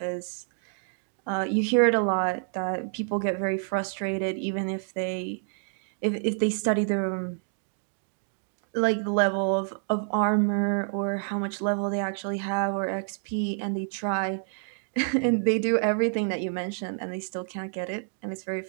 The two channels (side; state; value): left; silent; digital silence